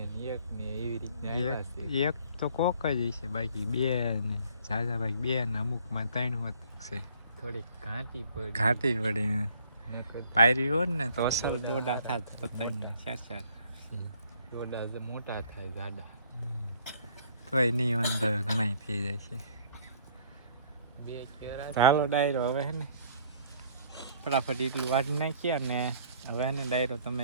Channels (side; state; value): both; inverted; correlation -0.59